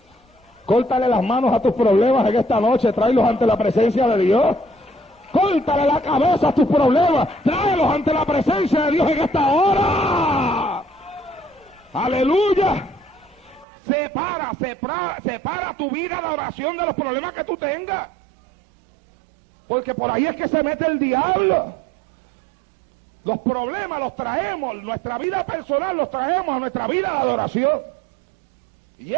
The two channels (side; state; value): left; drops out; at 13.7 s